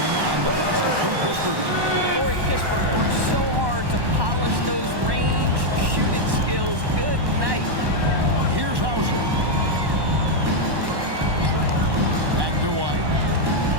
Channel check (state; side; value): late; left; 1.1 ms